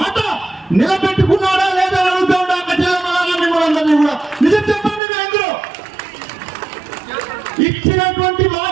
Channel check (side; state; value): left; drops out; at 5.0 s